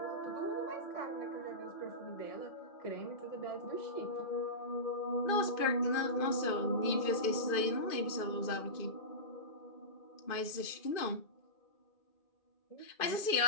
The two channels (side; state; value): right; late; 2.5 ms